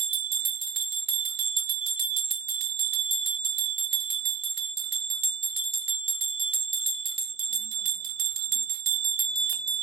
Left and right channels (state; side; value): quieter; left; 5.9 dB